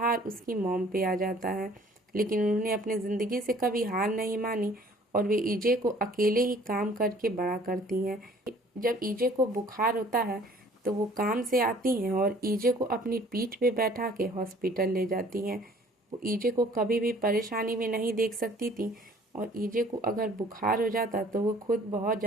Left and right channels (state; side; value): normal; both; correlation 0.54